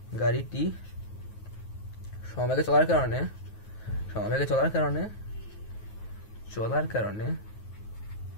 সমবেগে চলার কারণে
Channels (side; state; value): right; late; 9.4 ms